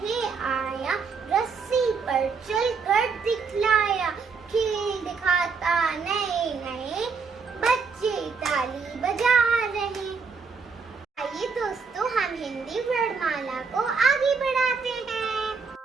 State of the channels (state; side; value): quieter; left; 5.2 dB